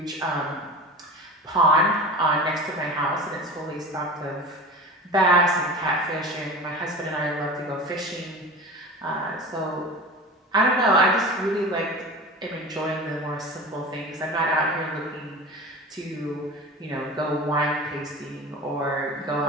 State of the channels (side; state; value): both; normal; correlation 0.33